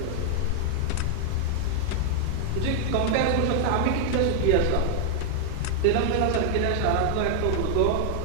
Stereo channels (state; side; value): different; both; correlation -0.01